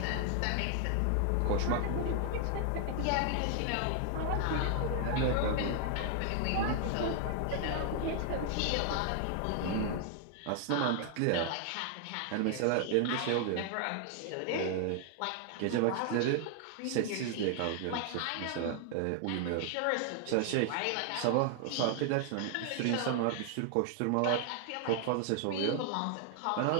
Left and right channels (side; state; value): both; different; correlation 0.00